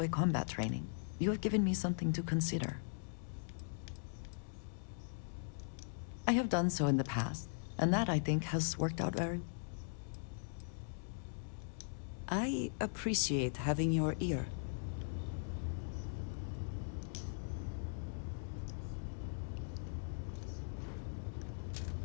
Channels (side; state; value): right; silent; digital silence